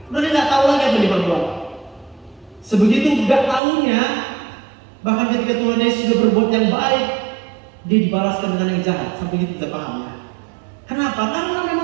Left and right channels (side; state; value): left; drops out; at 3.6 s